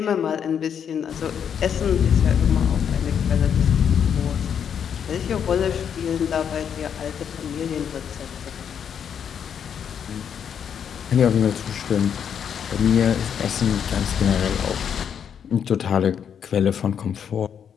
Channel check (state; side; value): quieter; right; 8.0 dB